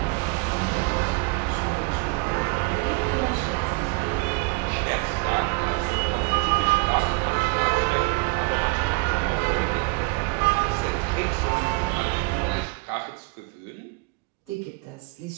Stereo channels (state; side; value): quieter; left; 28.2 dB